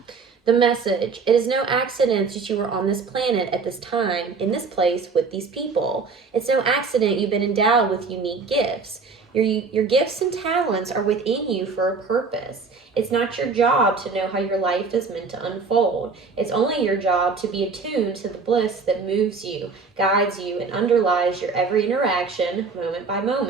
The message, it is no accident that you are on this planet at this time, in this place, with these people. It's no accident you've been endowed with unique gifts. Your gifts and talents are within you for a purpose. It's not your job to know how your life is meant to unfold. It's only your job to be attuned to the bliss that moves you, guides you, and underlies your every interaction, moment by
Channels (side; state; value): left; quieter; 4.6 dB